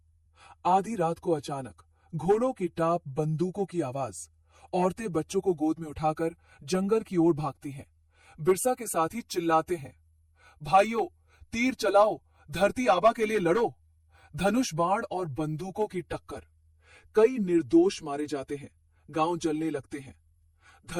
आधी रात को अचानक घोड़ों की टाप, बंदूकों की आवाज। औरतें बच्चों को गोद में उठाकर जंगल की ओर भागती हैं। बिरसा के साथी चिल्लाते हैं, भाइयों, तीर चलाओ, धरती आबा के लिए लड़ो। धनुष बाण और बंदूकों की टक्कर। कई निर्दोष मारे जाते हैं, गांव जलने लगते हैं।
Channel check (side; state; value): both; identical; correlation 1.00